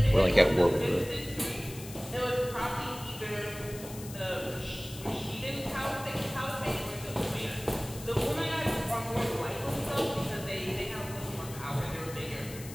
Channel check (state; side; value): noise; left; hiss, 14 dB below the sound